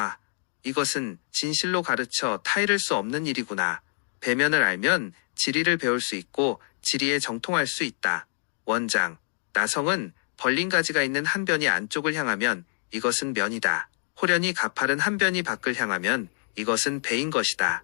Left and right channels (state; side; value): silent; right; digital silence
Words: 이것은 진실로 가르쳐 타이를 수 없는 일이구나. 배면을 알면 지리를 배울 수 있고 지리에 정통할 수 있다. 원장, 나성은 벌린 가지가 있는 한 변이 안쪽을 향하면 이것은 면이다. 호련히 가파른 한 변이 밖을 향하면 이것은 배인 것이다.